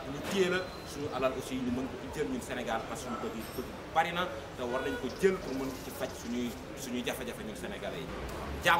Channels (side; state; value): both; identical; correlation 1.00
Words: ñu téye la, suñu alal aussi ñu mën ko jël ñun Sénégal parce que suñu bëgg bari na te war nañ ko jël pour mën ci faj suñuy jafe-jafe ñun Sénégalais yi.